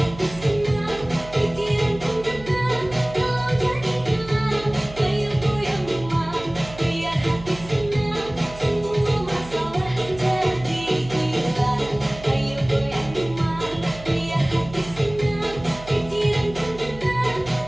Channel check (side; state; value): right; noise; hum, 16 dB below the sound